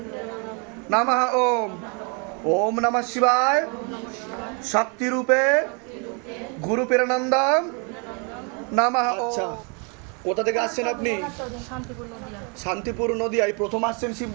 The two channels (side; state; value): left; quieter; 34.9 dB